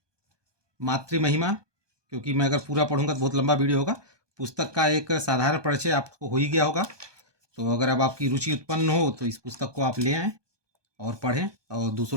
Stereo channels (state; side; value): late; left; 1.2 ms